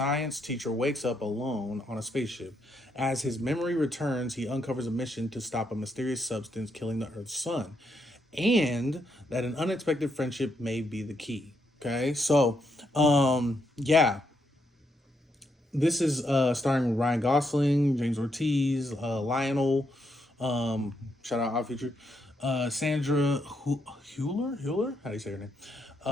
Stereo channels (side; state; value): both; normal; correlation 0.78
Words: teacher wakes up alone on a spaceship. As his memory returns, he uncovers a mission to stop a mysterious substance killing the Earth's sun, and that an unexpected friendship may be the key. Okay, so yeah, this is starring Ryan Gosling, James Ortiz, Lionel, shout out Odd Future, Sandra Hewler, how do you say her name?